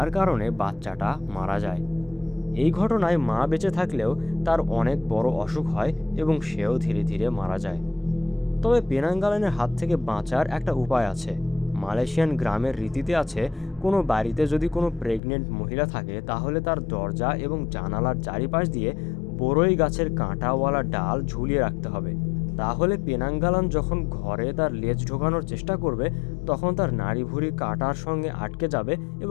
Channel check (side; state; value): right; drops out; at 15.2 s